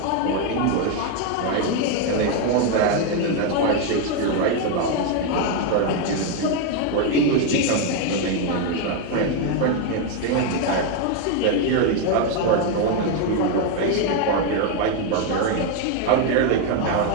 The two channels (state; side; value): different; both; correlation 0.01